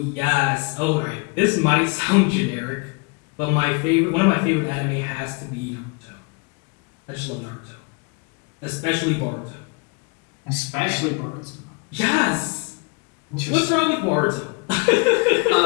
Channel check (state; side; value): quieter; right; 30.4 dB